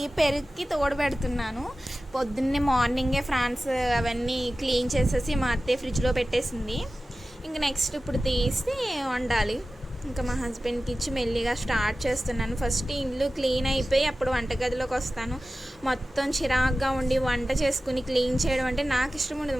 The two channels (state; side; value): normal; both; correlation 0.95